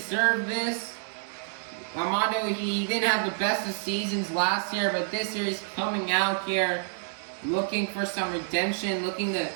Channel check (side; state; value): left; silent; 59 dB below the other